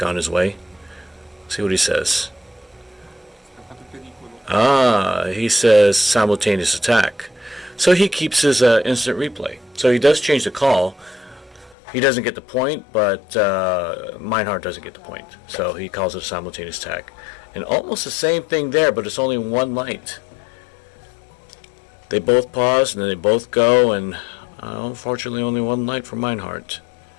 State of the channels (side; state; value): right; drops out; at 11.8 s